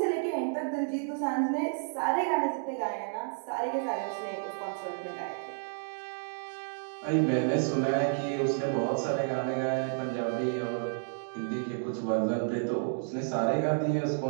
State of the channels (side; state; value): left; silent; digital silence